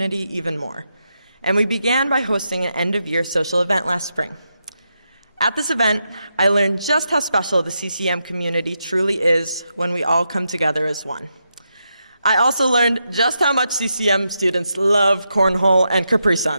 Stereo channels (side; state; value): both; inverted; correlation -0.85